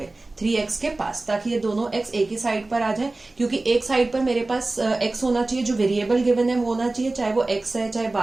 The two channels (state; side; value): quieter; left; 3.1 dB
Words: 3x के पास, ताकि ये दोनों x एक ही साइड पर आ जाए. क्योंकि एक साइड पर मेरे पास x होना चाहिए, जो वेरिएबल गिवन है वो होना चाहिए, चाहे वो x है, चाहे